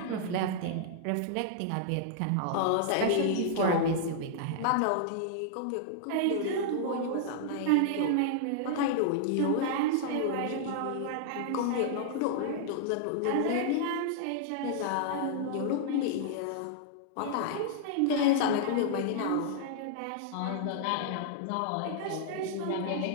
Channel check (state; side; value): different; both; correlation -0.01